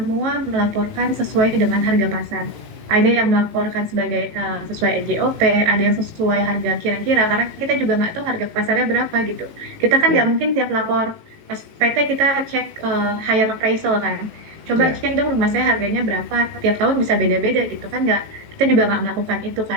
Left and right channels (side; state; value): left; late; 18 ms